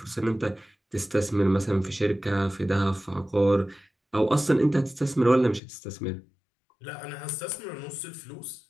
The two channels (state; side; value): drops out; right; at 5.6 s